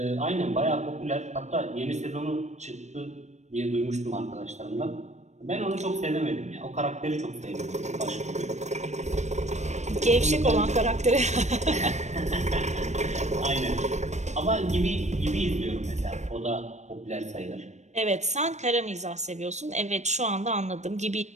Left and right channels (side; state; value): left; late; 0.34 ms